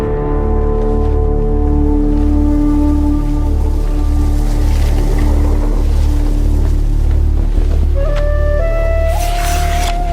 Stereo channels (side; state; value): both; identical; correlation 1.00